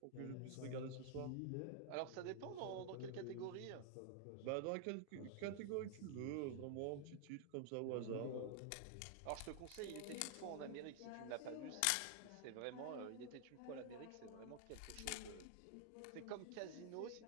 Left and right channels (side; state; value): both; different; correlation 0.00